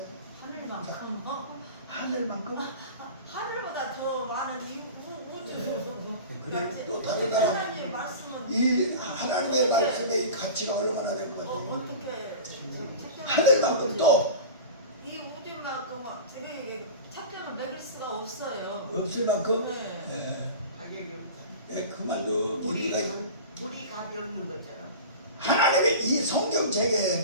하늘만큼 하늘만큼? 하늘보다 더 많은 이 우주. 그래 또 다른 나라 하나님의 말씀은 이 하나님의 말씀의 이 가치가 얼마나 될 것 같아요? 어떻게 하늘만큼 또 이 우주만큼 이게 책정을 매길 수가 없어요. 없을 만큼 네. 가격이 없다. 그 말도 물이 우리가 값이 없는 것처럼. 하나님의 이 성경책의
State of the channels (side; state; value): both; inverted; correlation -0.33